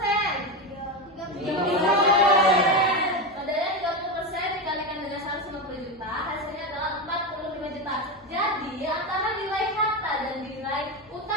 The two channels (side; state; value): both; normal; correlation 0.15